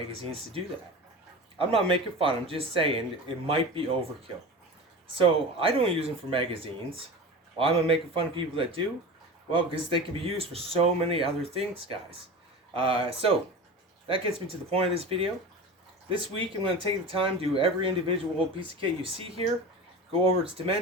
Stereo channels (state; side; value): normal; both; correlation 0.31